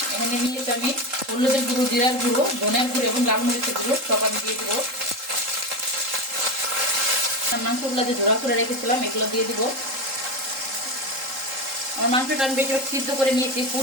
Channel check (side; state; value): left; late; 3.7 ms